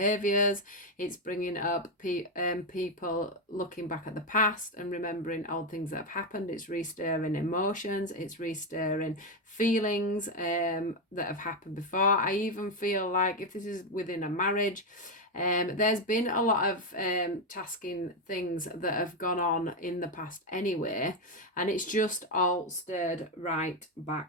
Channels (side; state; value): both; normal; correlation 0.07